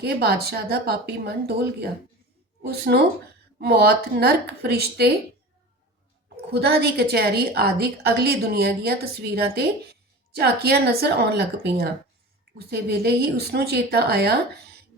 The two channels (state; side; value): normal; both; correlation 0.34